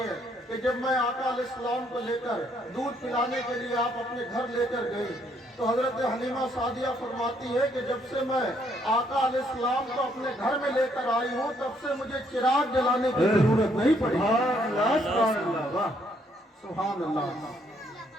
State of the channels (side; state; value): both; normal; correlation 0.70